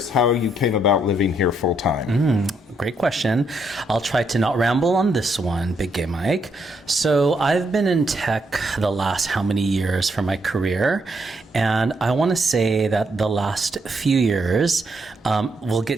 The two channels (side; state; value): both; normal; correlation 0.76